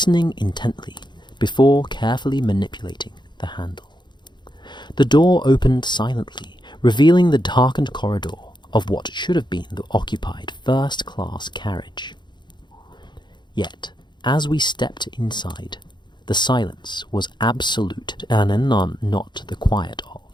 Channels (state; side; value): late; right; 0.22 ms